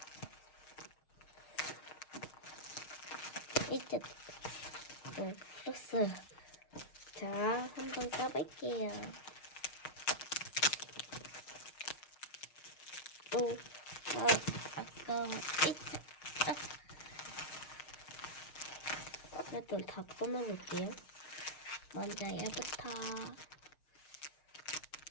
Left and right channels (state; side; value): late; right; 6.4 ms